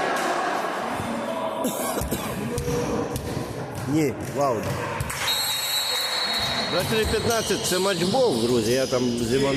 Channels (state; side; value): identical; both; correlation 1.00